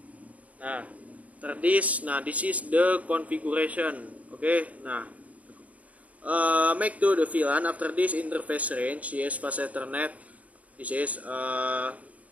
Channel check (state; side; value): late; left; 0.069 ms